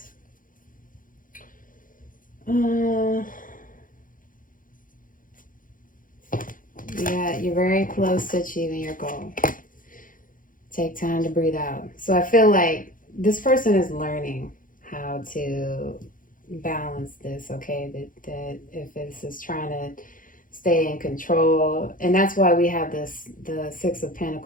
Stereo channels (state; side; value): late; right; 0.39 ms